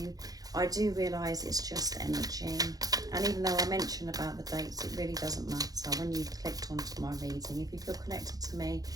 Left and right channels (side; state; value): left; late; 0.18 ms